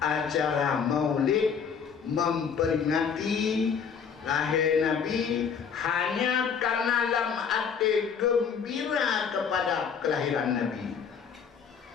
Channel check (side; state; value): right; quieter; 6.6 dB